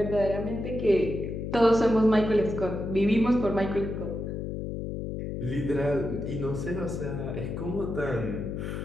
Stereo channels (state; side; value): noise; left; hum, 5 dB below the sound